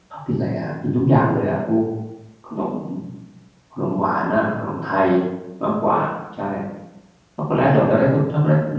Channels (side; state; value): both; identical; correlation 1.00